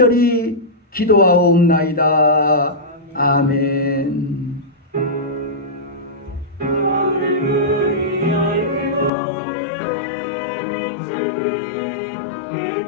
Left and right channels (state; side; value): drops out; right; at 9.1 s